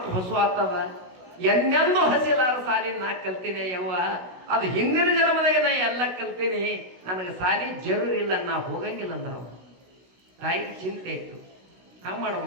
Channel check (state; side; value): late; left; 16 ms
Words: ಹೊಸು ಆಗ್ತದ. ಎಂದೆಂದೂ ಹಸಿಲಾರ ಸಾಲಿ ನಾ ಕಲ್ತೀನಿ ಯವ್ವ. ಅದು ಹಿಂದಿನ ಜನ್ಮದಾಗ ನಾ ಎಲ್ಲ ಕಲ್ತೀನಿ, ನನಗೆ ಸಾಲಿ ಜರೂರ್ ಇಲ್ಲ, ನಾ ಹೋಗಂಗಿಲ್ಲ ಅಂದ್ರ ತಾಯಿಗೆ ಚಿಂತೆ ಇತ್ತು. ಹಂಗೆ